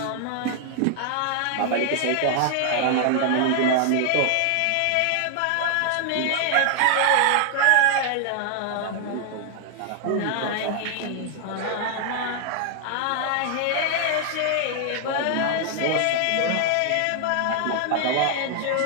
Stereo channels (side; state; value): both; different; correlation 0.00